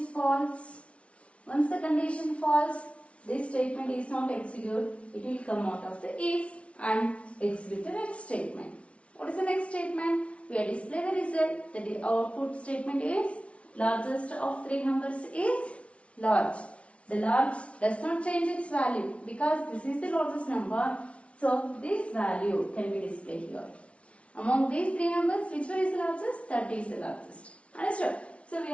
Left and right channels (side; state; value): right; late; 0.062 ms